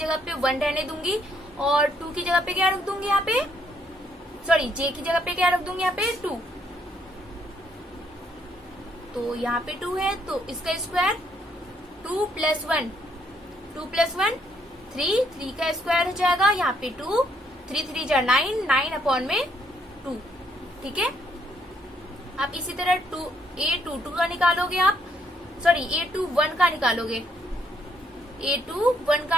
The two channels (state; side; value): normal; both; correlation 0.70